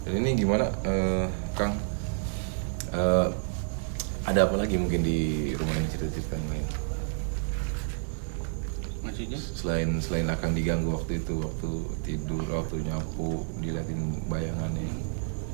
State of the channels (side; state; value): left; silent; digital silence